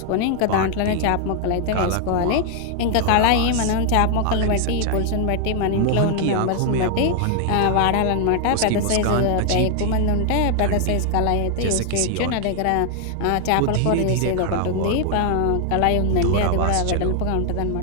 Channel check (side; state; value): both; different; correlation 0.00